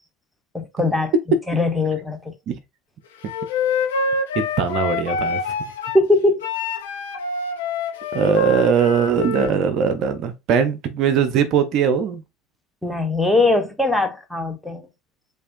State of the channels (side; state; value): both; normal; correlation 0.39